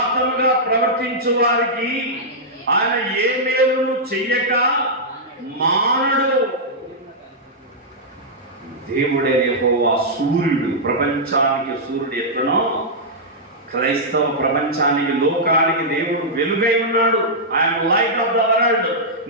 ప్రవర్తించు వారికి ఆయన ఏ మేలును చెయ్యక మానడు. దేవుడే యెహోవా సూర్యుడు. ప్రపంచానికి సూర్యుడు ఎట్లనో క్రైస్తవ ప్రపంచానికి, లోకానికి దేవుడు వెలుగై ఉన్నాడు. I'm light of the world.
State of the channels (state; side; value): normal; both; correlation -0.09